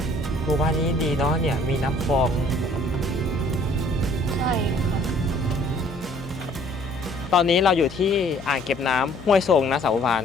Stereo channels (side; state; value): left; noise; hum, 17 dB below the sound